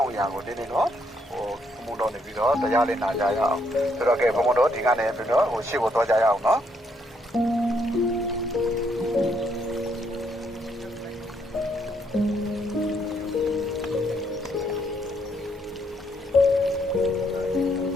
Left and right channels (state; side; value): normal; both; correlation 0.73